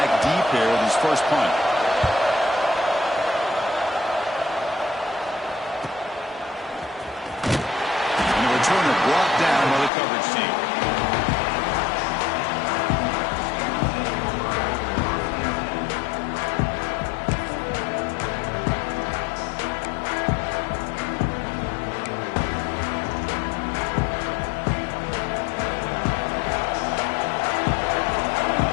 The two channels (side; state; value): right; drops out; at 9.9 s